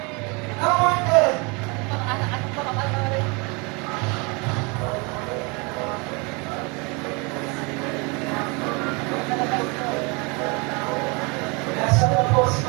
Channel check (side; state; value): left; quieter; 29.7 dB